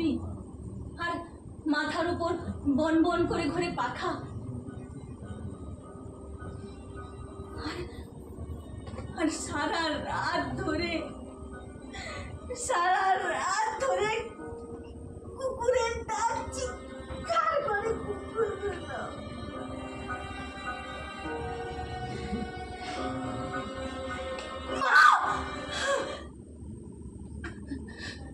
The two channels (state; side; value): identical; both; correlation 1.00